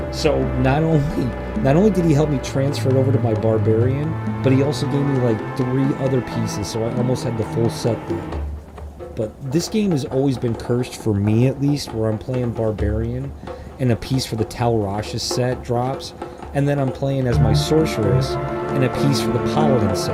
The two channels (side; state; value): both; identical; correlation 1.00